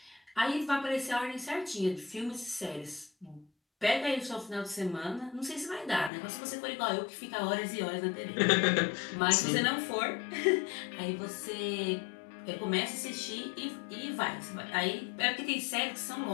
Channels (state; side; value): drops out; right; at 6.1 s